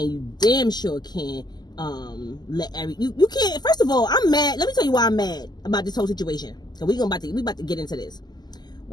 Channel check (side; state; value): right; late; 0.20 ms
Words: you damn sure can't you can't. First of all, I'm mad. Let me tell you why I'm mad about this whole situation. So we about to get into this.